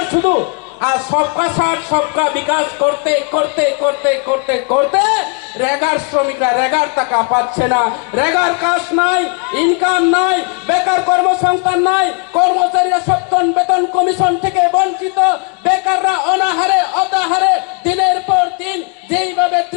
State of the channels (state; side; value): quieter; right; 34.5 dB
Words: শুধু আর সবকা সাথ সবকা বিকাশ করতে করতে করতে করতে করতে রেগার শ্রমিকরা রেগার টাকা পাচ্ছে না রেগার কাজ নাই ইনকাম নাই বেকার কর্মসংস্থান নাই কর্মচারীরা সপ্তম বেতন কমিশন থেকে বঞ্চিত বেকাররা অনাহারে অতাহারে দিনের পর দিন যেইভাবে